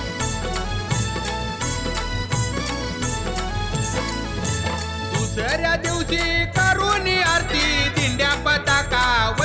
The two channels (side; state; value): both; identical; correlation 1.00